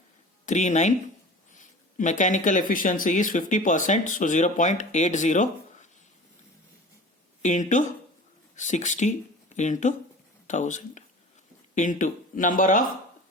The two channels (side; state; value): both; normal; correlation 0.39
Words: Mechanical efficiency is 50%, so 0.80 into 60 into 1000 into number of